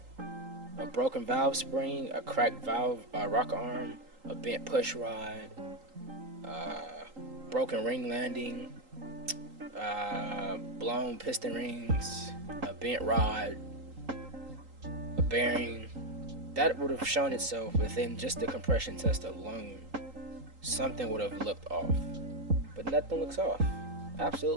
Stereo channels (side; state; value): left; late; 3.8 ms